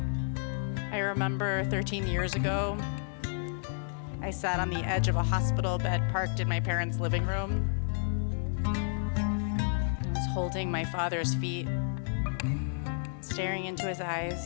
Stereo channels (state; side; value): silent; right; digital silence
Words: I remember 13 years ago, I sat on the edge of a hospital bed parked in my parents' living room. I was holding my father's feet, staring into his